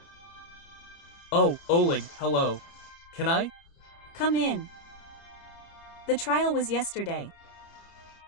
Oh, Oleg, hello. Can I? come in. The trial was yesterday.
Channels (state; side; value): late; right; 30 ms